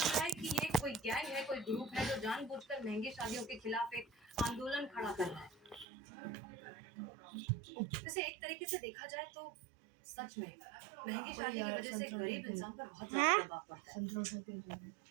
है कि ये कोई गैंग है, कोई ग्रुप है जो जानबूझकर महंगी शादियों के खिलाफ एक आंदोलन खड़ा कर रहा है। वैसे एक तरीके से देखा जाए तो सच में महंगी शादी की वजह से गरीब इंसान पर बहुत ज्यादा प्रभाव पड़ता है।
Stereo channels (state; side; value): drops out; left; at 5.9 s